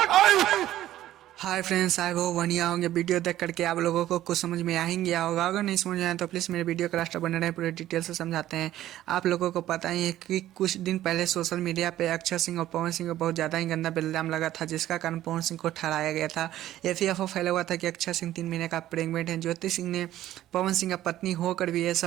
हाय फ्रेंड्स, आई होप बढ़िया होंगे। वीडियो देख करके आप लोगों को कुछ समझ में आ ही गया होगा। अगर नहीं समझ में आया तो प्लीज़ मेरे वीडियो का लास्ट बने रहे, पूरे डिटेल से समझाते हैं। आप लोगों को पता ही है कि कुछ दिन पहले सोशल मीडिया पे अक्षय सिंह और पवन सिंह को बहुत ज़्यादा ही गंदा इल्ज़ाम लगा था, जिसका कारण पवन सिंह को ठहराया गया था। FAFO फैला हुआ था कि अक्षय सिंह 3 महीने का प्रेग्नेंट है। ज्योति सिंह ने पवन सिंह का पत्नी होकर भी ये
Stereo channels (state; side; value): quieter; left; 13.6 dB